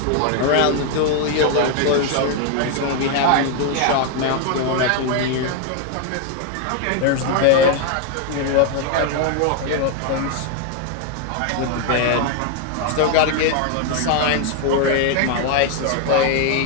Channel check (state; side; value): different; both; correlation 0.01